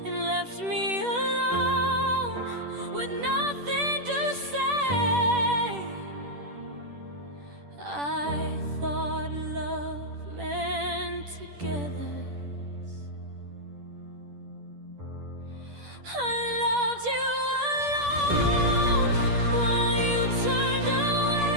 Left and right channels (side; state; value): left; late; 10 ms